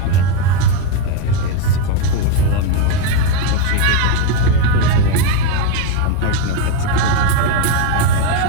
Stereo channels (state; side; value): different; both; correlation 0.03